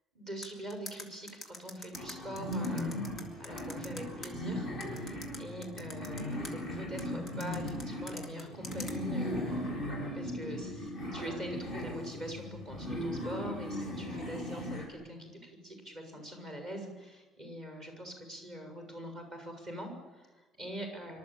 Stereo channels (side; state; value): both; normal; correlation 0.42